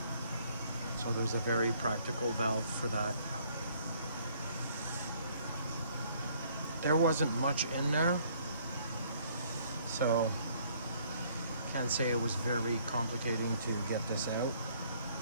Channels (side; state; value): both; inverted; correlation -0.63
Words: So there's a very practical valve for that. There wasn't much in there, so can't say it was very complicating to get this out.